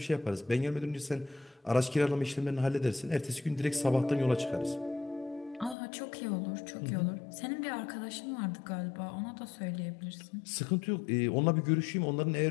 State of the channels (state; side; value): drops out; right; at 5.8 s